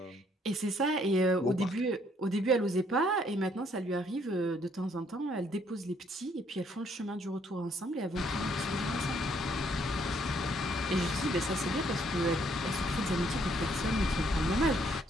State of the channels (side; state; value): both; normal; correlation 0.67